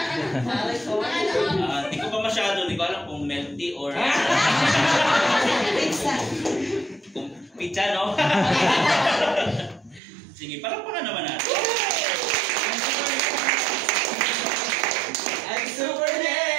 Hindi ko pa masyado, hindi ko alam kung melty or kung pizza, no? Sige, palakpakan naman natin. I'm super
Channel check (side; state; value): left; drops out; at 10.0 s